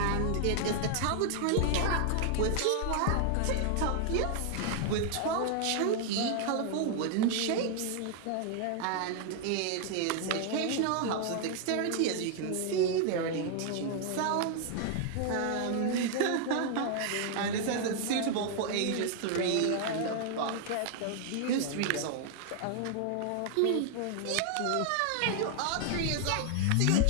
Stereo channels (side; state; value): both; different; correlation 0.00